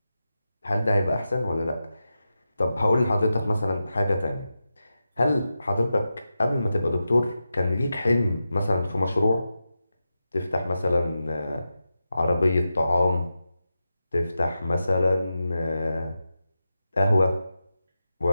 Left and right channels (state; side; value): inverted; both; correlation -0.91